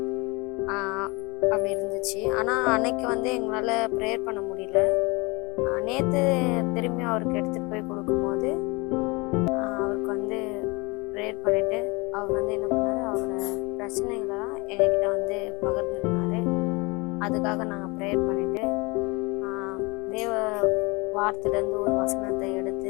அப்படி இருந்துச்சு. ஆனால் அன்னைக்கு வந்து எங்களால் ப்ரேயர் பண்ண முடியல. நேற்று திரும்பி அவருக்கு எடுத்துகிட்டு போய் கொடுக்கும்போது அவருக்கு வந்து ப்ரேயர் பண்ணிவிட்டு அவர் வந்து என்ன பண்ணார், அவரோட பிரச்சனைகளெல்லாம் எங்ககிட்ட வந்து பகிர்ந்துக்கினாரு. அதுக்காக நாங்கள் ப்ரேயர் பண்ணிவிட்டு தேவ வார்த்தையிலேருந்து ஒரு வசனத்தை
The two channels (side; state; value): right; quieter; 26.6 dB